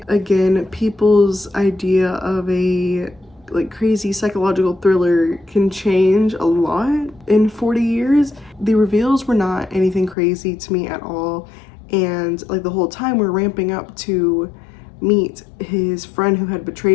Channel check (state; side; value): drops out; right; at 10.2 s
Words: Again, people's idea of a like crazy psychological thriller can change a lot in 40 years. The reveals were not anything crazy to me at all, and like the whole time we're ramping up to meet his friend who had